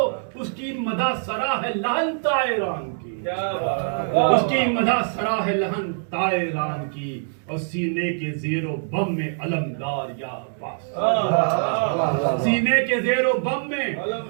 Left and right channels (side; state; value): left; silent; digital silence